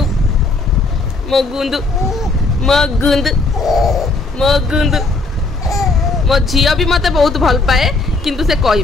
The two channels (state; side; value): quieter; right; 3.4 dB